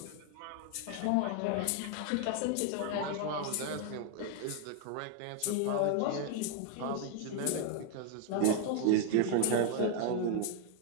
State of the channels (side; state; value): both; different; correlation 0.00